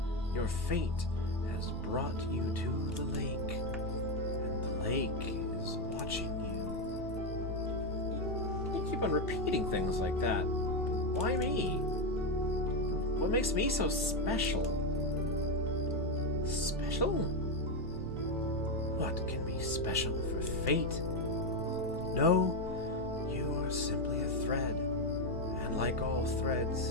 Your fate has brought you to the lake, and the lake is watching you. You keep on repeating things like that. Why me? What makes me so special? Special? What can be special for fate? No, you are simply a thread, and like all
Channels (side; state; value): both; normal; correlation 0.07